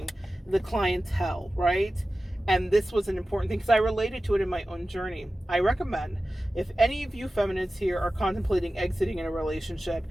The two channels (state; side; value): normal; both; correlation 0.95